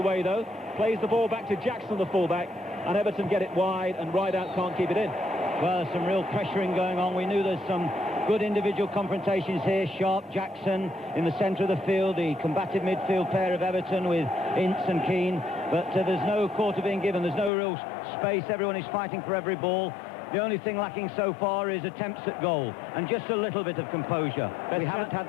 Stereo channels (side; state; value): right; drops out; at 17.5 s